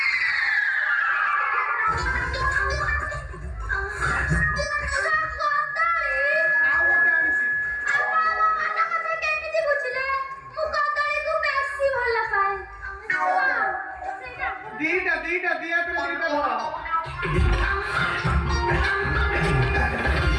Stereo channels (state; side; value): identical; both; correlation 1.00